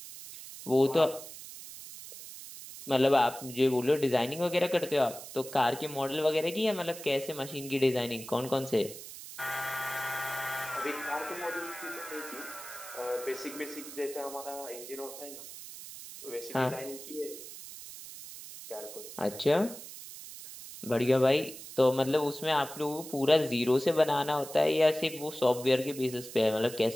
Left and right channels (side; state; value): right; noise; hiss, 13 dB below the sound